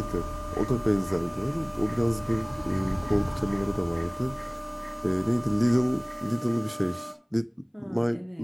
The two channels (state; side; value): identical; both; correlation 1.00